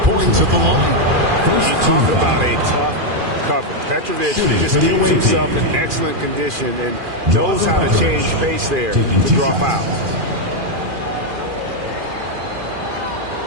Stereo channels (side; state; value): left; late; 2.4 ms